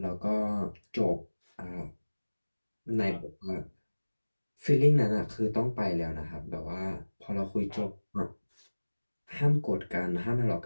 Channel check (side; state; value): both; inverted; correlation -1.00